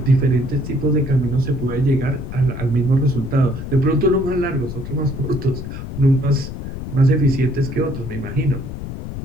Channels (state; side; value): noise; left; rumble, 8 dB below the sound